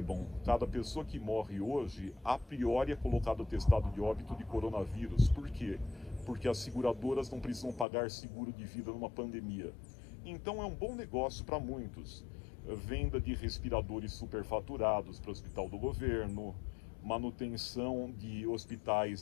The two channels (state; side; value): drops out; right; at 7.9 s